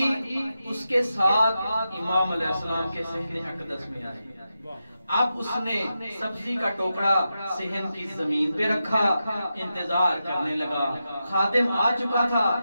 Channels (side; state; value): both; inverted; correlation -0.89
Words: اس کے ساتھ امام علیہ السلام کے صحن اقدس میں آئے۔ اب اس نے سبزی کا ٹوکرا صحن کی زمین پہ رکھا، انتظار کرنے لگا۔ خادم آ چکا تھا،